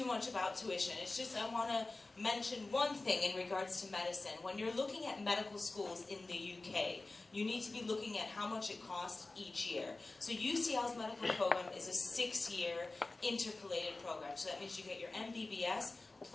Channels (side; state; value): right; quieter; 3.2 dB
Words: much about tuition. It's just I want to mention one thing in regards to medicine. When you're looking at medical schools in the UK, you need to be looking at how much it costs each year. So UCL's medical program is a 6-year intercalated program. So that means you get your MBBS